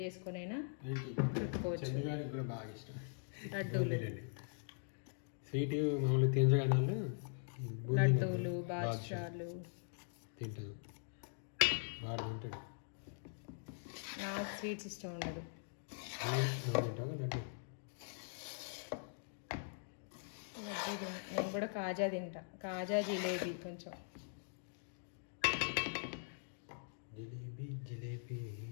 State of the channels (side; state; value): right; silent; digital silence